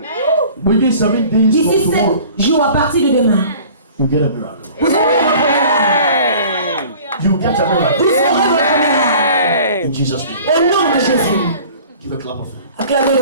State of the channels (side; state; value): both; inverted; correlation -0.46